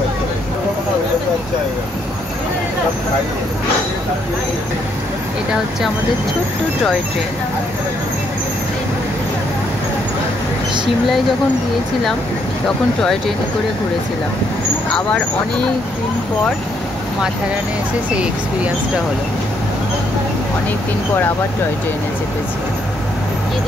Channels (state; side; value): normal; both; correlation 0.72